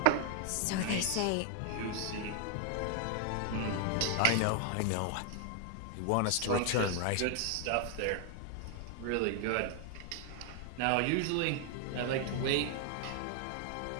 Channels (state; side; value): different; both; correlation 0.00